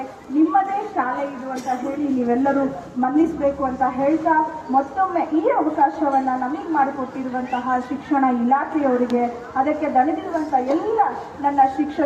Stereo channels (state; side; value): identical; both; correlation 1.00